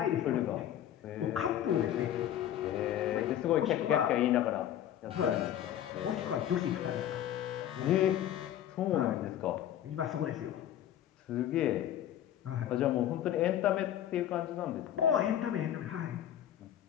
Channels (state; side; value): quieter; right; 11.2 dB